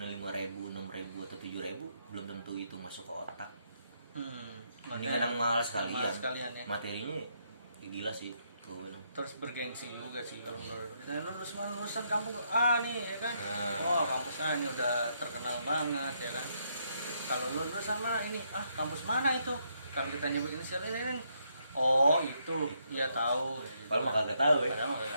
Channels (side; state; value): both; inverted; correlation -0.76